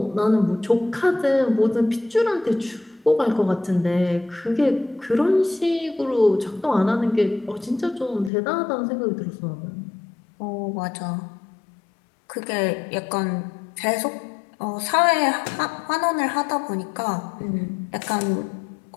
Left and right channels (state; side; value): drops out; right; at 8.3 s